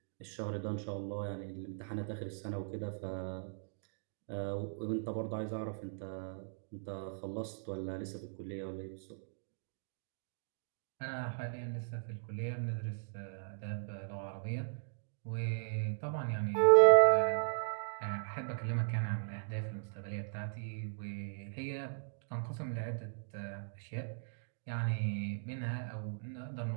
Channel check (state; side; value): silent; left; digital silence